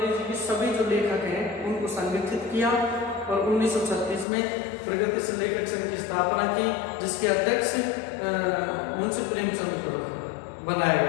की सभी जो लेखक हैं उनको संगठित किया और 1936 में प्रगतिशील लेखक संघ की स्थापना की, जिसके अध्यक्ष मुंशी प्रेमचंद को बनाया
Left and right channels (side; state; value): right; drops out; at 4.2 s